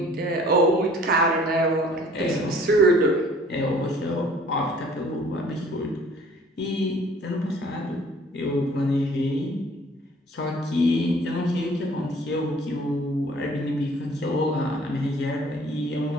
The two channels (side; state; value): both; normal; correlation 0.53